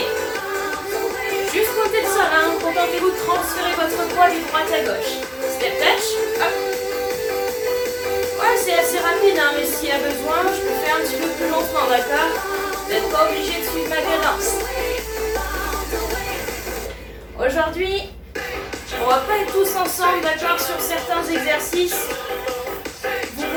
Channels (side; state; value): both; identical; correlation 1.00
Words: Juste comptez le sol, hein. Contentez-vous de transférer votre poids du droite à gauche. Step touch, hop. Ouais, c'est assez rapide, hein, mais s'il y a besoin, je peux faire un petit peu plus lentement, d'accord? Vous n'êtes pas obligé de suivre ma cadence. Aujourd'hui, on va pas être tous ensemble, d'accord, sur certains exercices. Vous